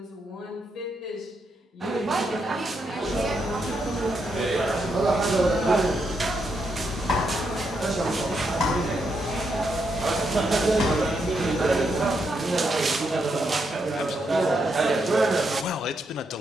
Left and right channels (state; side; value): normal; both; correlation 0.80